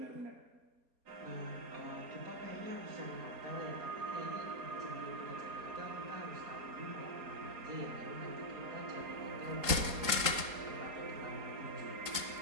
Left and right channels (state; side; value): late; left; 4.2 ms